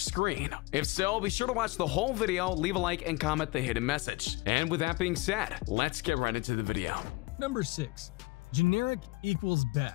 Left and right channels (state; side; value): quieter; right; 23.5 dB